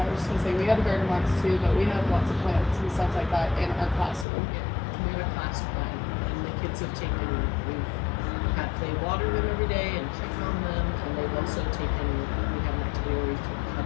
just gonna say, we have a garden box too, but we have lots of plants and stuff like that in our classroom. We have a class plan, and the kids have they water them every day and check on them, and they've also taken, we have an activity where we took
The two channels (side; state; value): right; drops out; at 4.2 s